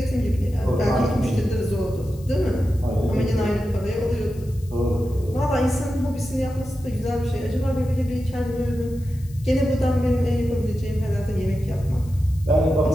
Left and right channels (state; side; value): noise; left; hiss, 25 dB below the sound